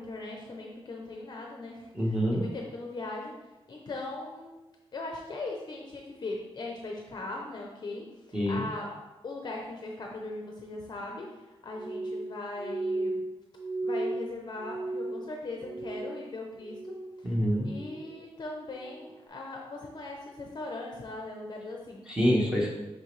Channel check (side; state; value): both; normal; correlation 0.83